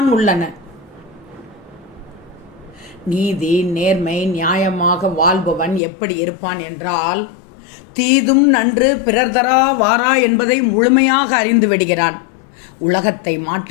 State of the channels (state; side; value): drops out; right; at 5.8 s